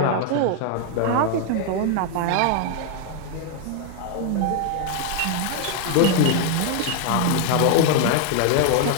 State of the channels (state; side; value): different; both; correlation 0.00